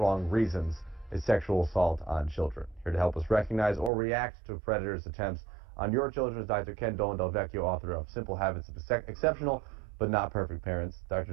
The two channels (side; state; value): left; drops out; at 3.9 s